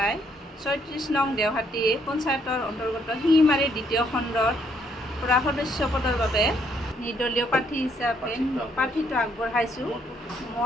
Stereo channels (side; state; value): both; normal; correlation 0.69